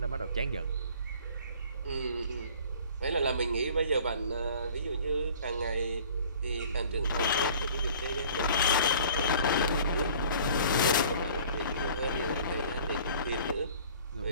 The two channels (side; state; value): both; inverted; correlation -0.49